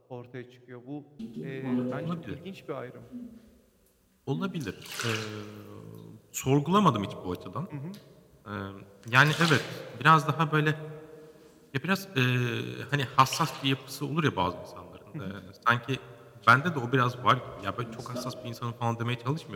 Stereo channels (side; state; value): both; identical; correlation 1.00